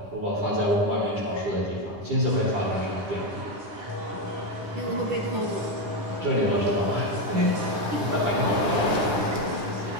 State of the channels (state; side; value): late; left; 9.9 ms